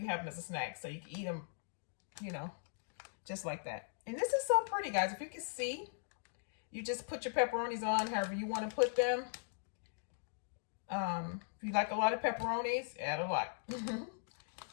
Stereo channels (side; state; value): right; silent; digital silence